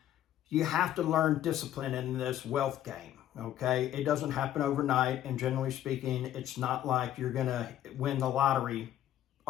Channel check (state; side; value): quieter; right; 12.0 dB